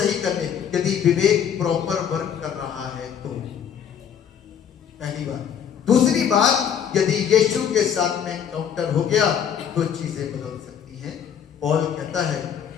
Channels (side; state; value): right; quieter; 8.4 dB